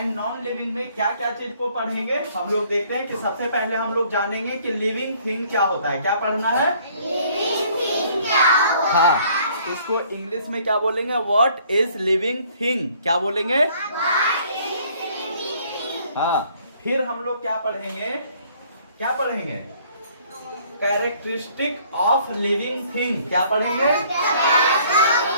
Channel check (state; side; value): inverted; both; correlation -0.60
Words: नॉन लिविंग में क्या क्या चीज को पढ़ेंगे हम लोग देखते हैं कि सबसे पहले हम लोग जानेंगे कि लिविंग थिंग क्या होता है। क्या पढ़ना है? लिविंग थिंग क्या होता है। हाँ, इसको इंग्लिश में क्या बोलेंगे? What is living thing? क्या बोलेंगे? हाँ, फिर हम लोग क्या पढ़ेंगे? क्या पढ़ेंगे? Characteristic of living thing. क्या पढ़ेंगे?